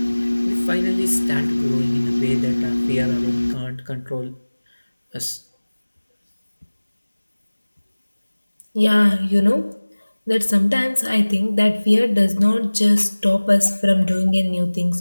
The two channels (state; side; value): inverted; both; correlation -1.00